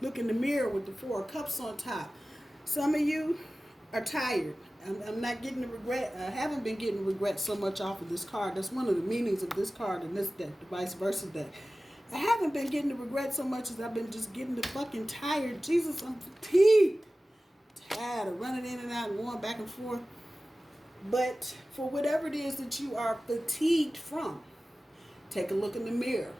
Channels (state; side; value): normal; both; correlation 0.96